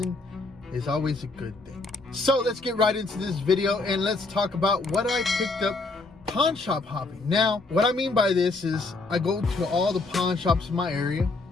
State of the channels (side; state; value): right; quieter; 3.5 dB